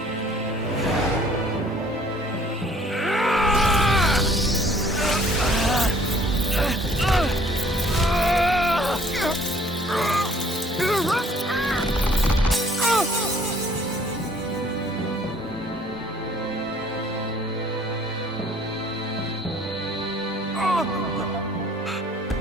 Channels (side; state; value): both; normal; correlation 0.57